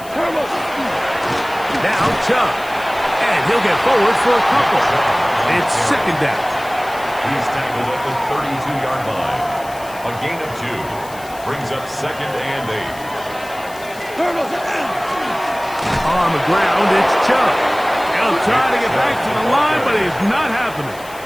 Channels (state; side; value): noise; left; hiss, 19 dB below the sound